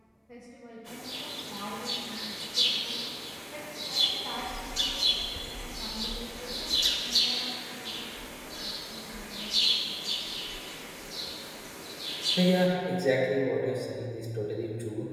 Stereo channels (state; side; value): identical; both; correlation 1.00